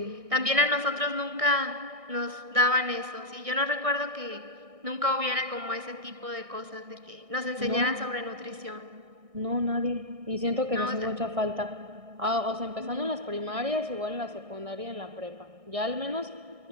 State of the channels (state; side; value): late; left; 1.6 ms